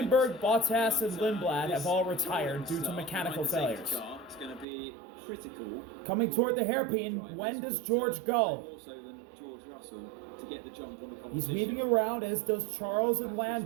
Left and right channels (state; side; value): drops out; left; at 4.7 s